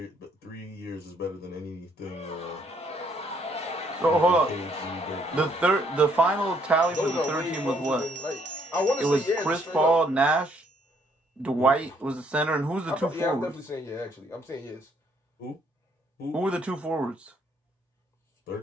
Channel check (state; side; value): normal; both; correlation 0.68